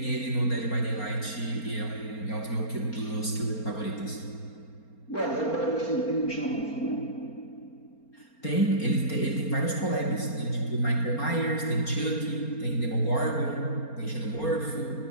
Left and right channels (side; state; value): right; late; 4.3 ms